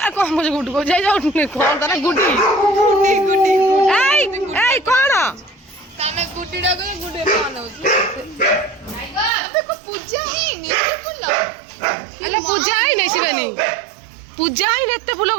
कौन मुझे गुड्डू को जाई जाओ कौन तारा गुड्डी गुड्डी ए कौन ताने गुड्डीडा को गुड्डे पान होची देखो पूजा है नी एते फूल अल्ला पूजा है नहीं शिवानी पूजा है नहीं एते फूल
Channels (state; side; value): drops out; left; at 9.3 s